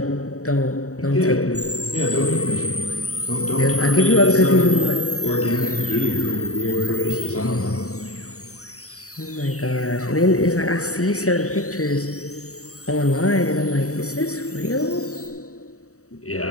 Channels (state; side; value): late; right; 0.65 ms